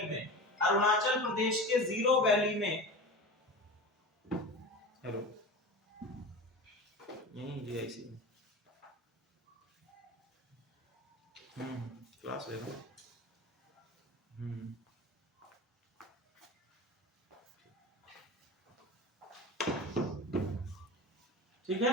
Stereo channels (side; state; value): both; normal; correlation 0.31